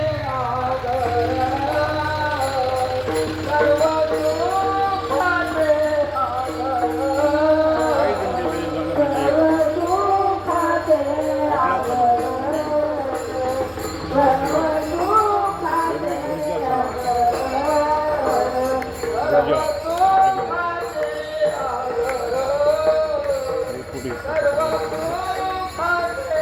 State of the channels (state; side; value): identical; both; correlation 1.00